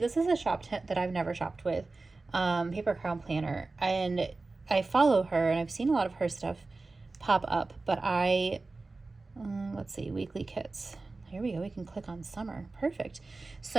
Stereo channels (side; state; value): left; quieter; 3.5 dB